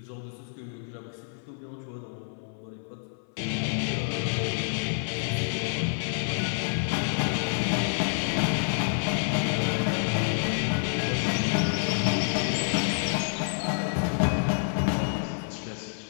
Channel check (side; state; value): right; silent; 59 dB below the other